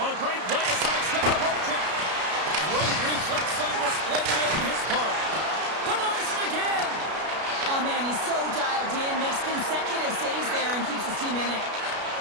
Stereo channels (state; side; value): late; left; 33 ms